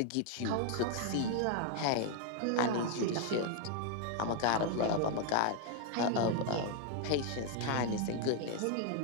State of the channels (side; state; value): both; different; correlation 0.00